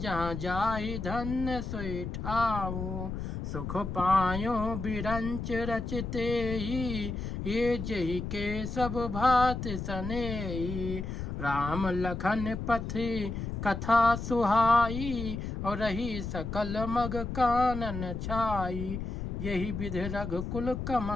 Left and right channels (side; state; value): left; noise; rumble, 5 dB below the sound